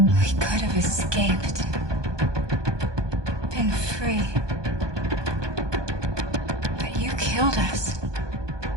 We could have escaped. Been free. But you killed us.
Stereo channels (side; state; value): left; late; 1.2 ms